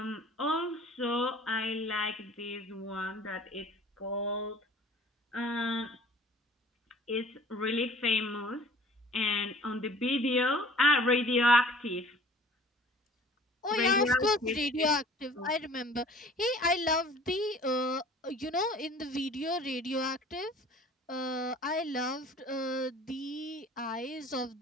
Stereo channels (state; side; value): normal; both; correlation 0.48